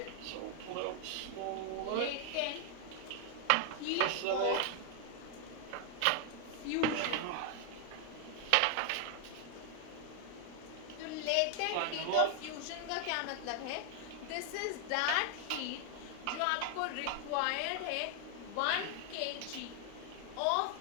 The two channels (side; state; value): both; different; correlation 0.00